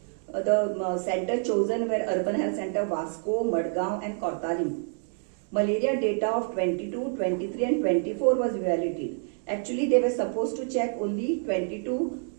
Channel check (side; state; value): left; silent; 57 dB below the other